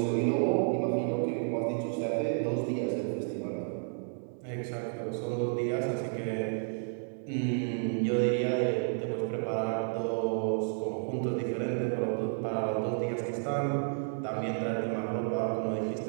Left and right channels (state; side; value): silent; left; digital silence